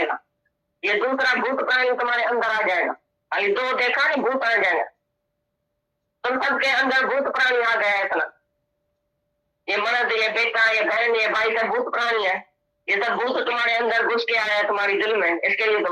ये दूसरा भूत प्राणी तुम्हारे अंदर आ जाएगा। अभी दो देखा नहीं, भूत आ जाएगा। तुम सबके अंदर भूत प्राणी आ गया है इतना। ये मर्द, ये बेटा, ये बहन, ये भाई सब भूत प्राणी है। ये सब भूत तुम्हारे अंदर घुस के आया है तुम्हारी दिल में, इसके लिए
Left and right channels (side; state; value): both; identical; correlation 1.00